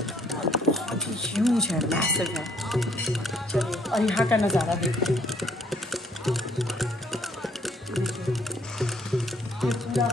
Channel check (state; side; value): normal; both; correlation 0.65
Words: और बहुत ही ह्यूज है, मैसिव है। चलिए और यहाँ का नज़ारा देखते हैं। ये पूरा